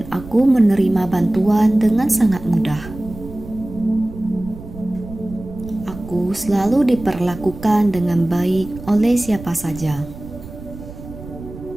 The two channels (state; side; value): noise; right; rumble, 14 dB below the sound